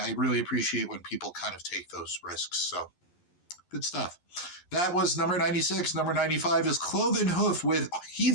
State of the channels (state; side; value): late; right; 11 ms